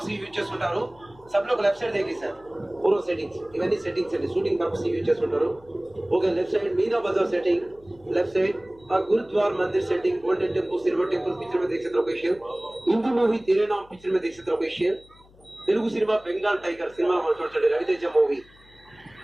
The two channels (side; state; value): left; noise; hum, 27 dB below the sound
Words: యూజ్ చేస్తుంటారు. सब लोग लेफ्ट साइड देखिए सर पूरा सेटिंग्स इवన్నీ సెట్టింగ్స్ అండి, షూటింగ్ పర్పస్ యూజ్ చేస్తుంటారు. ఓకే, లెఫ్ట్ సైడ్ मीना बाजार सेटिंग, लेफ्ट साइड और गुरुद्वार मंदिर setting, golden temple, silver temple picture में देख सकते लोकेशन. हिंदी मूवी तेरे नाम पिक्चर में देख सकते location. Telugu cinema Bengal Tiger cinema మనం చూడండి, రవితేజ మూవీ.